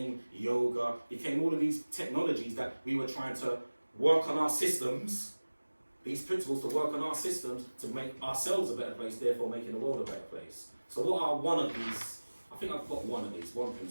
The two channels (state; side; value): inverted; both; correlation -1.00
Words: yoga, became all of these technologies that we were trying to work on our systems, these principles to work on our systems to make ourselves a better place, therefore making the world a better place. So what are one of these? I think I've got one of these, one